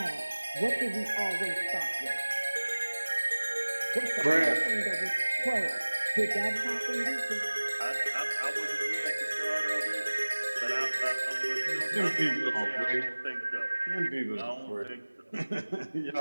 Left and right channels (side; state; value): both; inverted; correlation -1.00